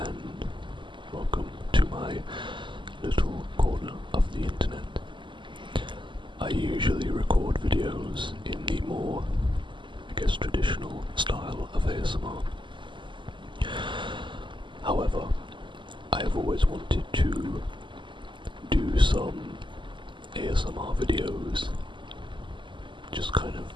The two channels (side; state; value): left; late; 0.24 ms